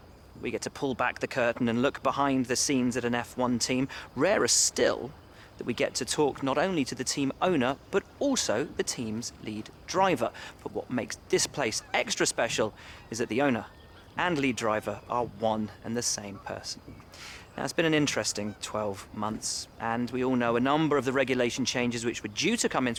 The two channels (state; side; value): identical; both; correlation 1.00